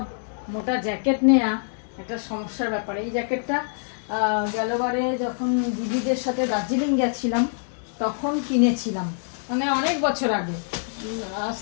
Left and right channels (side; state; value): right; silent; digital silence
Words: মোটা জ্যাকেট নেওয়া একটা সমস্যার ব্যাপার। এই জ্যাকেটটা গেলবারে যখন দিদিদের সাথে দার্জিলিং গেছিলাম তখন কিনেছিলাম, মানে অনেক বছর আগে, আজ